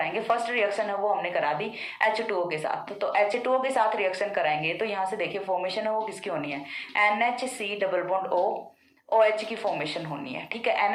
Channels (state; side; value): identical; both; correlation 1.00